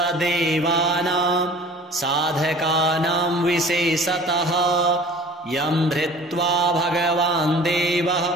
साधकानां विशेषतः यं धृत्वा भगवान् देवः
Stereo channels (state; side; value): normal; both; correlation 0.46